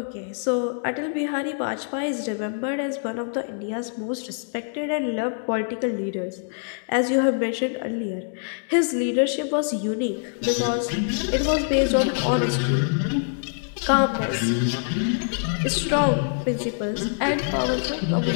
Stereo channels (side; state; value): right; silent; digital silence